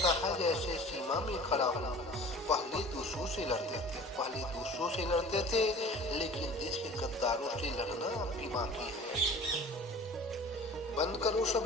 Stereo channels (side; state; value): both; normal; correlation 0.43